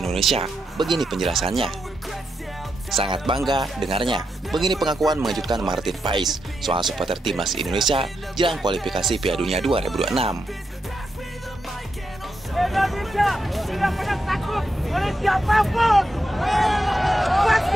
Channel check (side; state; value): both; normal; correlation 0.84